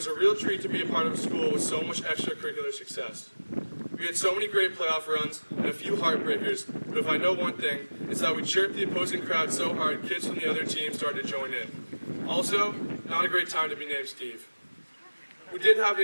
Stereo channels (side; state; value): both; inverted; correlation -1.00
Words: a real treat to be a part of a school with so much extracurricular success. We had so many great playoff runs and a few heartbreakers, but if I know one thing, it's that we chirped the opposing crowd so hard kids from the other team started to join in. Also, not a great time to be named Steve. We did have an